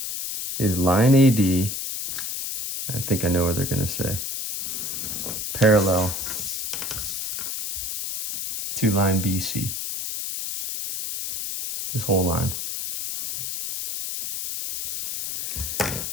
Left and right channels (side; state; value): left; noise; hiss, 4 dB below the sound